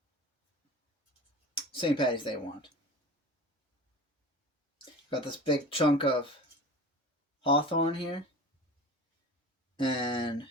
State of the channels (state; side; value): normal; both; correlation 0.36